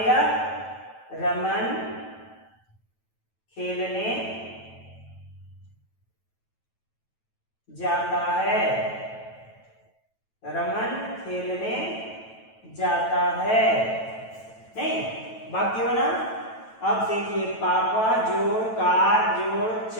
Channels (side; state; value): right; late; 9.1 ms